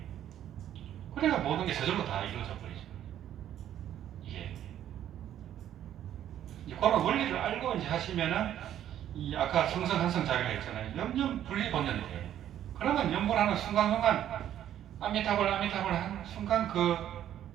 그래야 모든 게 저절로 다 이루어져 버리죠. 이게. 이제 그런 원리를 알고 이제 하시면은 이 아까 성성한성 자기가 있잖아요. 염염 분리본전이 돼요. 그러면 염불하는 순간순간 아미타불 한 순간 그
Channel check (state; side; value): quieter; left; 11.1 dB